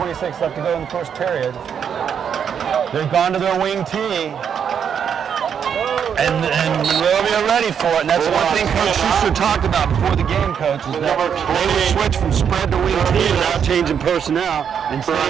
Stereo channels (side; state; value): left; quieter; 7.7 dB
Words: left to go in the first period. They've gone to their wing tee. And Monrovia ready for it, and that's one thing Coach Schuster talked about before the game, Coach, is that they would switch from spread to wing tee without changing personnel and